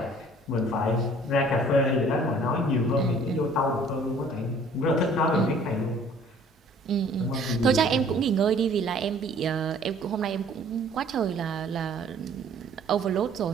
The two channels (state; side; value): normal; both; correlation 0.54